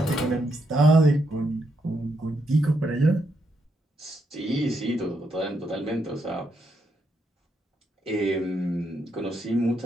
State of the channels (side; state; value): both; normal; correlation 0.79